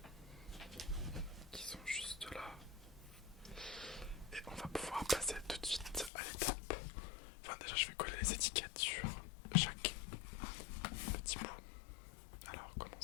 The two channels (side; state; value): right; drops out; at 6.1 s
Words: qui sont juste là. Et on va pouvoir passer tout de suite à l'étape. Enfin déjà je vais coller les étiquettes sur chaque petit bout. Alors